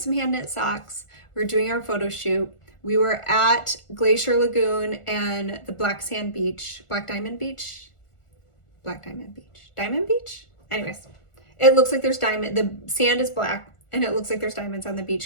hand knit socks. We were doing our photo shoot. We were at Glacier Lagoon and the Diamond Beach. Anyways, it looks like there's diamond. The sand is black and it looks like there's diamonds on the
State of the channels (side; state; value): right; late; 1.4 ms